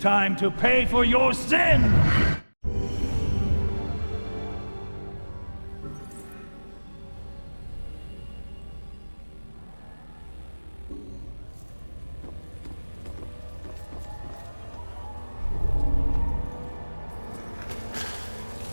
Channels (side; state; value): both; inverted; correlation -1.00